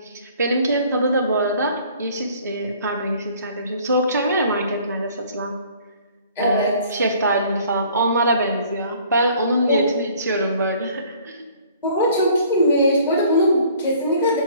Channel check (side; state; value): both; inverted; correlation -0.55